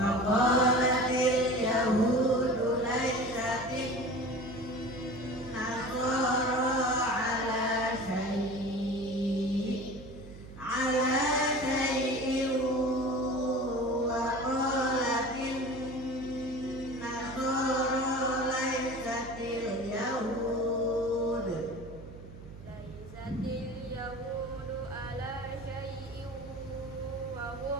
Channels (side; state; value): right; noise; hum, 15 dB below the sound